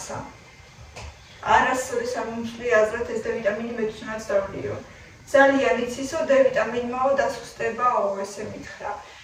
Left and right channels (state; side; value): identical; both; correlation 1.00